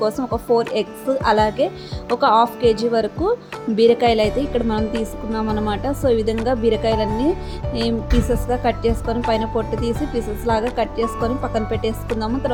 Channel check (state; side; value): identical; both; correlation 1.00